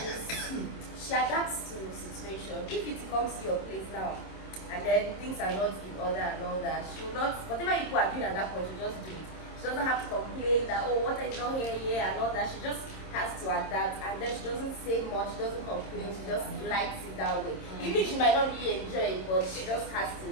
she adapts to the situation. If Yutee comes to your place now, and then things are not in order and all that, she will not, whatever people are doing at that point, she just do it. She doesn't have to complain that, oh, water is not here and all that. She just has to adapt, and then she doesn't say much, she doesn't complain, she just likes it that way. Even if she might not really enjoy it, but she just has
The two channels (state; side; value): late; right; 26 ms